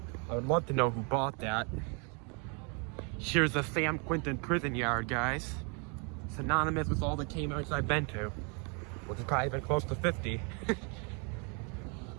I would love to know who bought that. Here's the Sam Quinton prison yard, guys. Synonymous with all the Kmarts I've been to, which has probably been close to 50.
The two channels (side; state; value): left; quieter; 35.3 dB